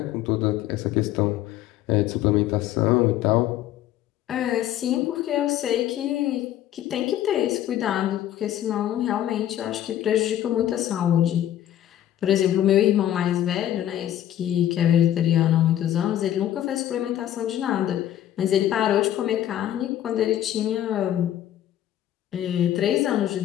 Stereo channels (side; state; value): right; quieter; 11.9 dB